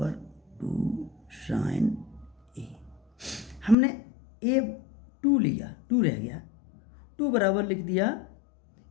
2 साइन ए। हमने ए 2 लिया, 2 रह गया, 2 बराबर लिख दिया,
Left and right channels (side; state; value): right; drops out; at 3.8 s